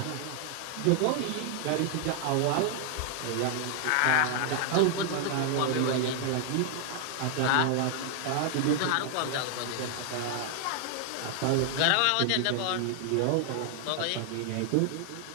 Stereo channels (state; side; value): different; both; correlation 0.00